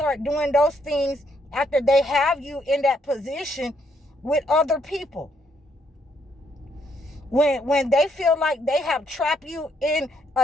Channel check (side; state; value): both; normal; correlation 0.73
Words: doing those things after they have you in that position with other people. When they feel like they have trapped you in